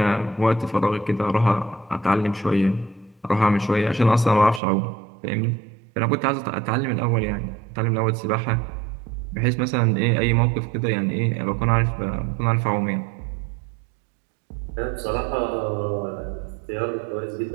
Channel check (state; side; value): drops out; left; at 4.6 s